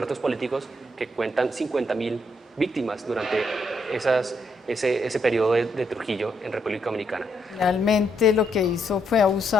políticos, que cuentan 50.000 víctimas durante ese periodo de Trujillo en República Dominicana. Realmente lo que hizo fue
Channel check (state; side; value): normal; both; correlation 0.76